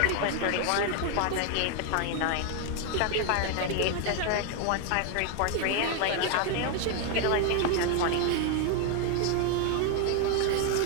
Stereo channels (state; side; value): different; both; correlation 0.00